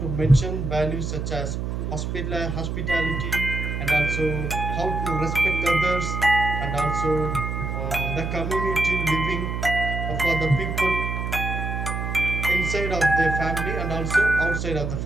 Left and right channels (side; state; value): right; noise; hum, 3 dB below the sound